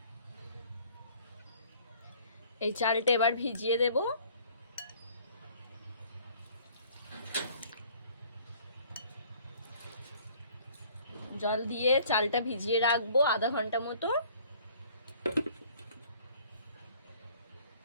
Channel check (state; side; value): inverted; both; correlation -0.55